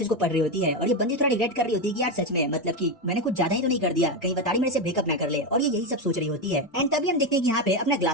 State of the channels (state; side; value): normal; both; correlation 0.11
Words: को पढ़ रही होती है और ये बंदी थोड़ा रिग्रेट कर रही होती है कि यार सच में मतलब कि मैंने कुछ ज्यादा ही तो नहीं कर दिया, कहीं बताड़ी मेरे से ब्रेकअप ना कर ले, और ये यही सब सोच रही होती है। एंड तभी हम देखते हैं कि यहाँ पे अपना